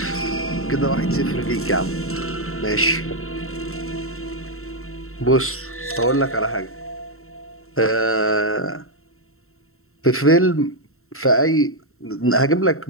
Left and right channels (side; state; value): right; late; 0.62 ms